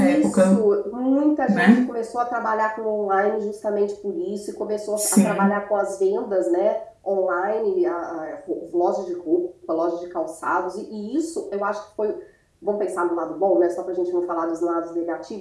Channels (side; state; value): both; identical; correlation 1.00